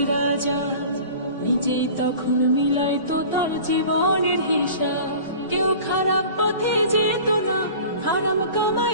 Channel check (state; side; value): inverted; both; correlation -0.41